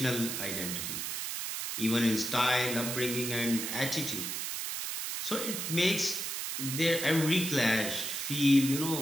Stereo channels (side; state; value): right; noise; hiss, 3 dB below the sound